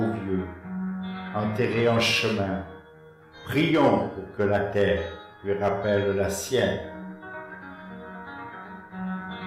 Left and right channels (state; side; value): identical; both; correlation 1.00